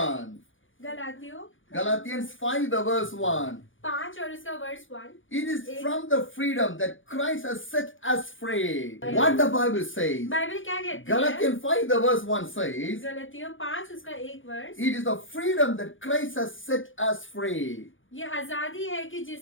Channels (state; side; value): late; right; 0.57 ms